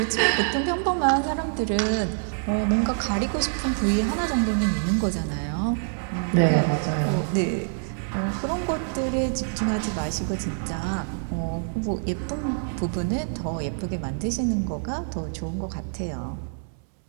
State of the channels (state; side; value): silent; left; 61 dB below the other